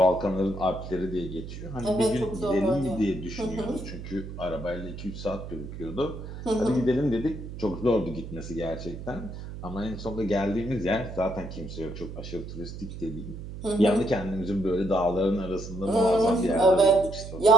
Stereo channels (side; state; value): right; noise; hum, 10 dB below the sound